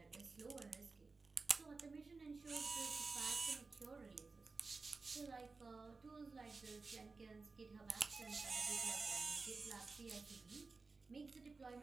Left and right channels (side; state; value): left; quieter; 4.1 dB